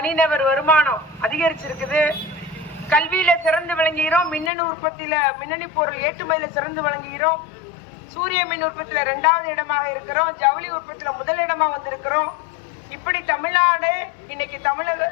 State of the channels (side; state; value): right; drops out; at 4.5 s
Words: வருமானம் அதிகரிச்சிருக்குது, கல்வியில சிறந்து விளங்குகிறோம், மின்னணு உற்பத்தியில மின்னணு பொருள் ஏற்றுமதியில சிறந்து விளங்குகிறோம், சூரிய மின் உற்பத்தியில 2வது இடமாக இருக்கிறோம், ஜவுளி உற்பத்தியில முதல் இடமா வந்திருக்கிறோம். இப்படி தமிழ்நாடு இன்னைக்கு